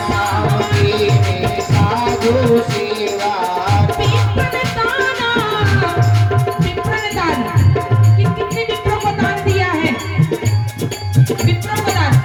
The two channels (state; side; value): identical; both; correlation 1.00